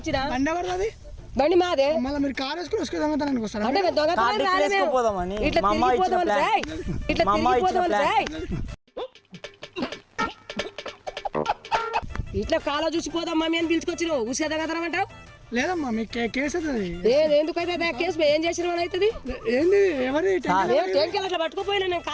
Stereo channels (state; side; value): identical; both; correlation 1.00